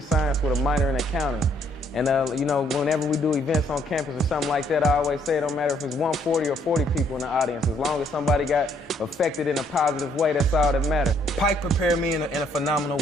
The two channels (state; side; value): normal; both; correlation 0.67